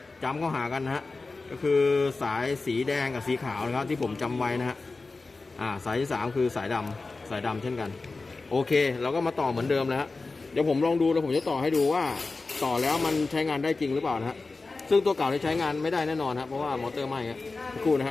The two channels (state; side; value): quieter; right; 3.7 dB